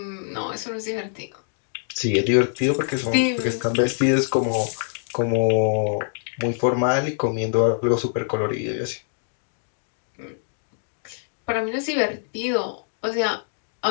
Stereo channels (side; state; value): right; silent; digital silence